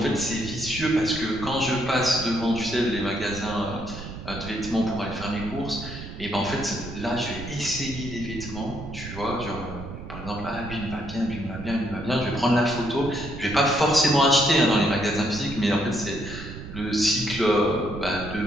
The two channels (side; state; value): right; noise; rumble, 11 dB below the sound